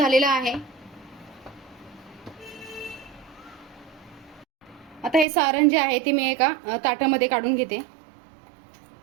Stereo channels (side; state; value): left; drops out; at 5.2 s